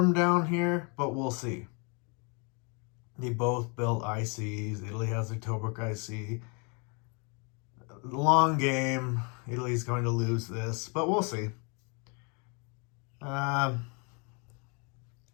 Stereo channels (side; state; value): right; quieter; 34.1 dB